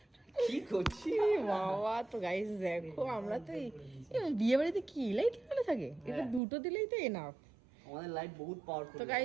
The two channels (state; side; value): drops out; left; at 6.4 s